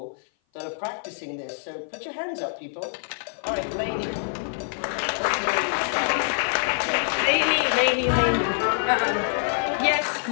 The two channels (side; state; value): right; silent; 56 dB below the other